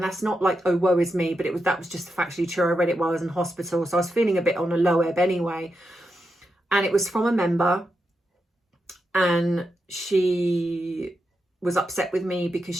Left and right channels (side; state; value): both; normal; correlation 0.86